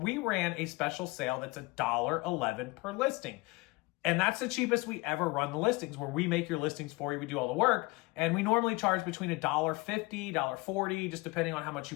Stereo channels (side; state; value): right; quieter; 24.2 dB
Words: ran a special sale that's $1.11 per listing. And that's the cheapest we ever run the listings, where we make your listings for you. We do all the work. And we normally charge between $1.50, $1.40, just depending on how much